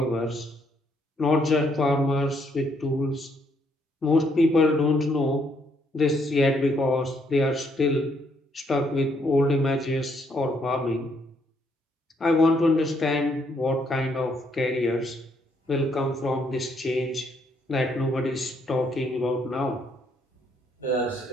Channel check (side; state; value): both; normal; correlation 0.71